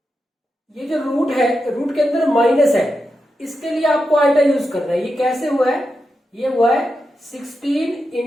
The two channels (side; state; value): both; normal; correlation 0.88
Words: ये जो रूट है, रूट के अंदर माइनस है, इसके लिए आपको आइटा यूज करना है। ये कैसे हुआ है? ये हुआ है 16